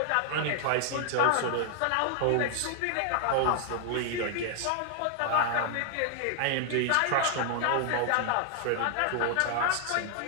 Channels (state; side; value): different; both; correlation 0.00